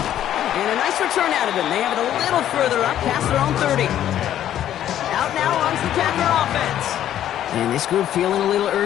a nice return out of him. They have it a little further up, past their own 30. Out now runs the Packer offense. And this group feeling a little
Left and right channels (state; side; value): quieter; right; 11.4 dB